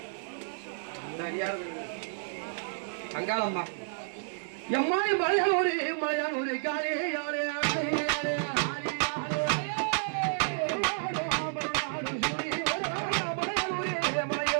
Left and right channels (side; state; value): left; silent; 57 dB below the other